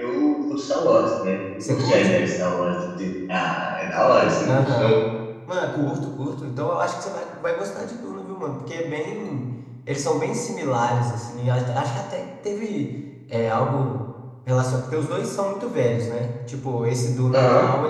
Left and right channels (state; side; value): identical; both; correlation 1.00